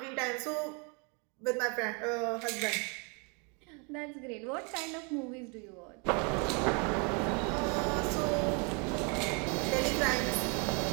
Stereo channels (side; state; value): left; quieter; 34.2 dB